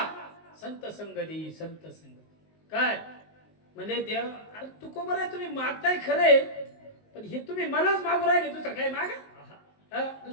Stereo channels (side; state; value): right; late; 19 ms